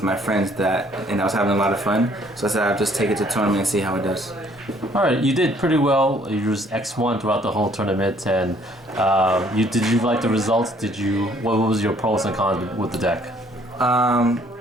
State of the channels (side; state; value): both; normal; correlation 0.62